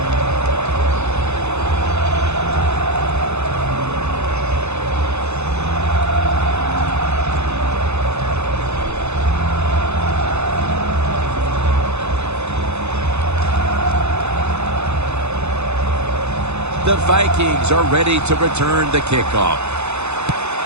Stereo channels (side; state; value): left; late; 0.81 ms